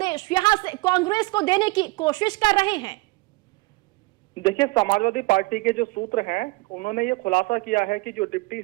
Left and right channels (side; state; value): left; quieter; 24.1 dB